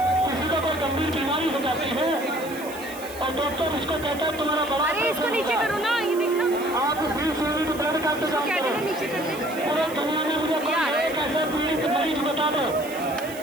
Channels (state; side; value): noise; right; hiss, 15 dB below the sound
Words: किसी को कोई गंभीर बीमारी हो जाती है और डॉक्टर उसको कहता है तुम्हारा बड़ा, अरे इसको नीचे करो ना, ये देखना आप 20 यूनिट ब्लड का इंतजाम करो। नीचे कर दे। पूरे दुनिया में मुझे कोई एक ऐसा पीड़ित मरीज बता दो